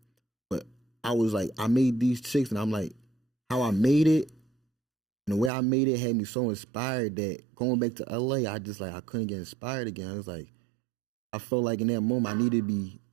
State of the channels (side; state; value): left; drops out; at 5.5 s